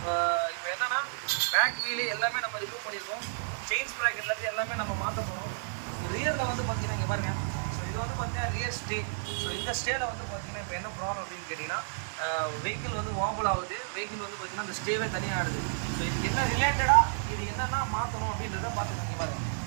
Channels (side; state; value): left; silent; 57 dB below the other